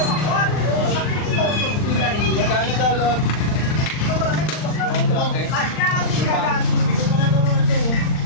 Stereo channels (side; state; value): right; late; 39 ms